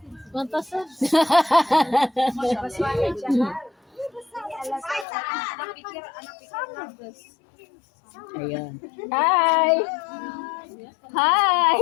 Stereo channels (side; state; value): right; drops out; at 5.1 s